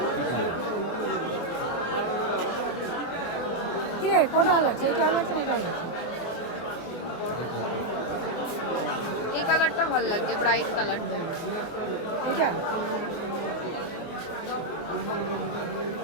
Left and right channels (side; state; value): right; late; 24 ms